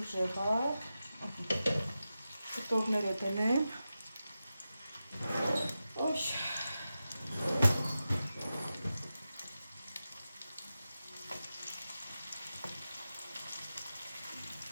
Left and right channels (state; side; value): inverted; both; correlation -0.92